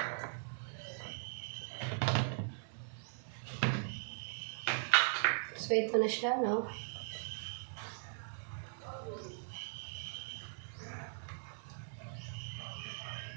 So, ito na siya, no?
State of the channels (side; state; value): left; silent; digital silence